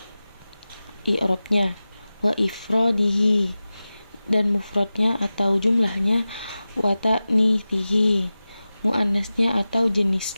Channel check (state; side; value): inverted; both; correlation -0.95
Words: i'rabnya, wa ifradihi, dan mufradnya atau jumlahnya, wa ta'nithihi, muannasnya atau